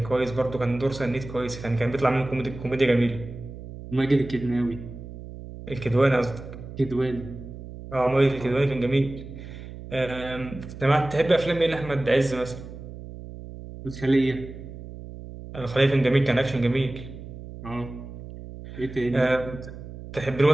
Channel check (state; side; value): noise; right; hum, 13 dB below the sound